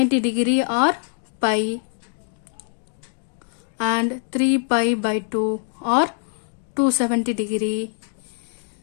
degree or pi, and 3 pi by 2 or 270 degree,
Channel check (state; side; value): silent; right; digital silence